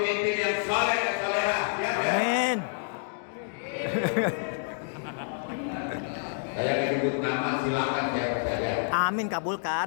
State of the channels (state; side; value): silent; right; digital silence